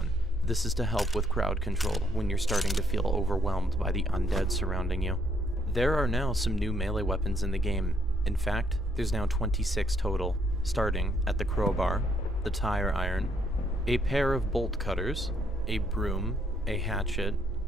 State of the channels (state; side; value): normal; both; correlation 0.70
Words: This is to help with crowd control when you're starting to feel overwhelmed by the undead surrounding you. There are now some new melee weapons in the game. In fact, there's now 26 total, starting at the crowbar, the tire iron, a pair of bolt cutters, a broom, a hatchet,